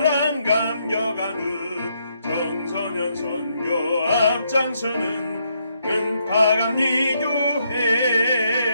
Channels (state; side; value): inverted; both; correlation -0.76